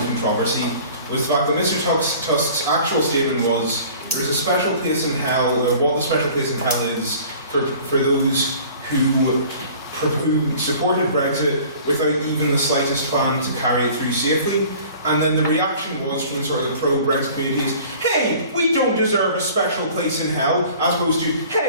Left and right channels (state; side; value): inverted; both; correlation -0.47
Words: was the fact that Mr. Tusk's actual statement was there is a special place in hell, or what the special place in hell is for those who supported Brexit without even the slightest plan to carry it through safely. And then the reaction was from sort of the pro-Brexit communities, hey, we don't deserve a special place in hell, as opposed to,